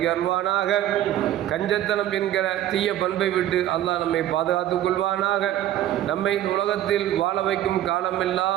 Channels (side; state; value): left; quieter; 12.5 dB